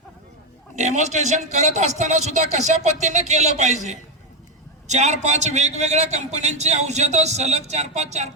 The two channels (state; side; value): normal; both; correlation 0.08